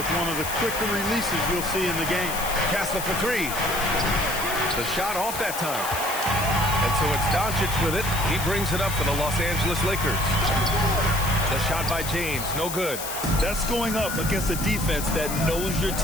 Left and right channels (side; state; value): left; noise; hiss, 7 dB below the sound